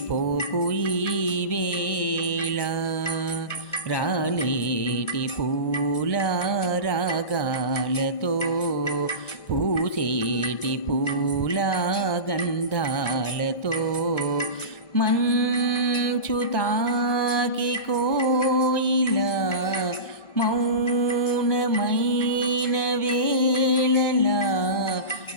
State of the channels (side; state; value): right; late; 1.6 ms